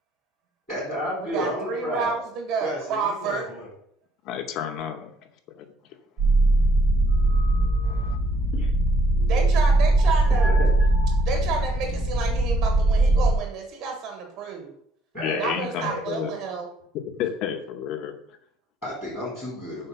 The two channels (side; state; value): both; normal; correlation 0.69